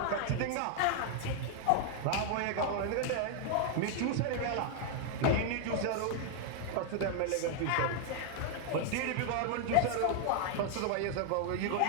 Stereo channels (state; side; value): different; both; correlation 0.00